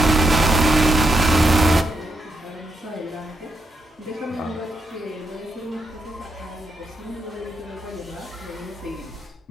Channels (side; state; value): both; normal; correlation 0.80